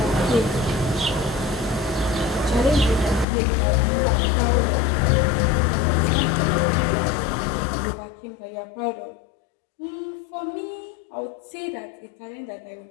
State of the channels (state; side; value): drops out; right; at 3.2 s